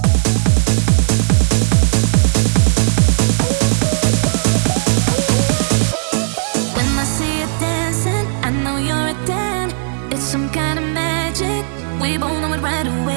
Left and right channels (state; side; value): silent; left; digital silence